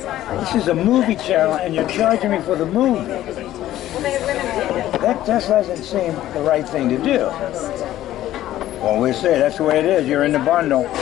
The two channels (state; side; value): quieter; right; 13.7 dB